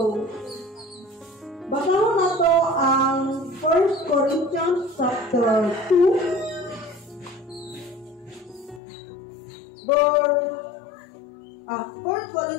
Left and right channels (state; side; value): drops out; right; at 8.8 s